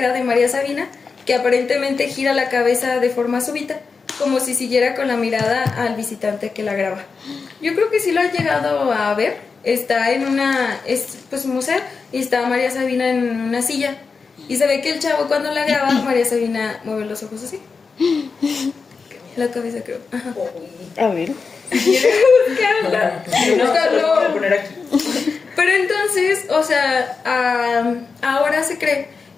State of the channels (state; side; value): quieter; right; 4.9 dB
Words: de María Sabina que aparentemente gira la cabeza de forma súbita, como si siguiera con la mirada al visitante que la graba. Yo creo que sí lo han llegado a ver. Está en un museo y está María Sabina en una silla. Y se ve que el chavo cuando la graba, María Sabina mueve los ojos así. La cabeza, creo. Ajá. A ver. Lo voy a poner aquí. Pero entonces, o sea, ahora se cree